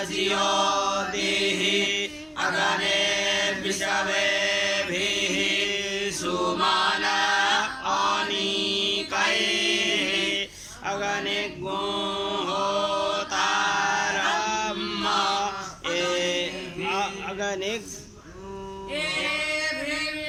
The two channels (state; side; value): identical; both; correlation 1.00